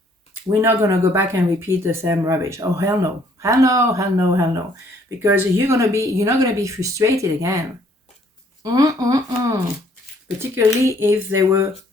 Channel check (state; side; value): normal; both; correlation 0.63